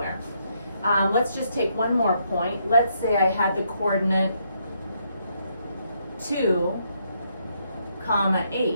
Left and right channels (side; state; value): both; inverted; correlation -0.75